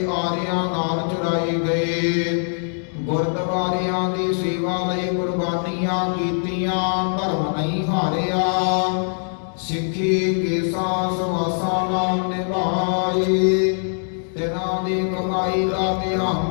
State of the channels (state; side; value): silent; right; digital silence